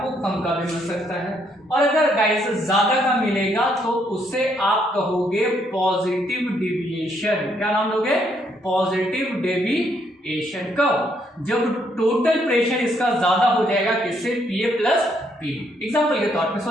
कम का भी मिल सकता है, और अगर गाइस ज्यादा का मिलेगा तो उससे आप कहोगे पॉजिटिव डेविएशन। क्या नाम दोगे, पॉजिटिव डेविएशन। कब, जब टोटल प्रेशर इसका ज्यादा हो जाएगा किससे, PA प्लस PB। एग्जाम्पल के तौर पे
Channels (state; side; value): normal; both; correlation 0.72